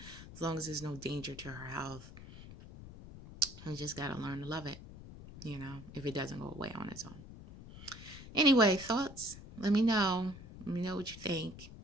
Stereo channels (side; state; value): left; noise; rumble, 15 dB below the sound